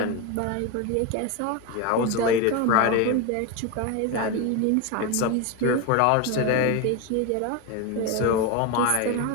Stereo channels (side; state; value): both; different; correlation 0.03